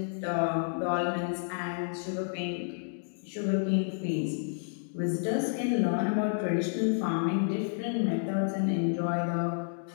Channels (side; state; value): right; silent; digital silence